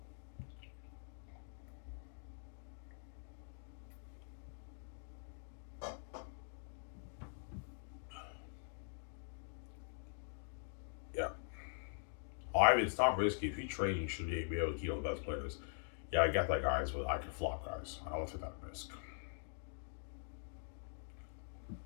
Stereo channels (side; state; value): right; silent; digital silence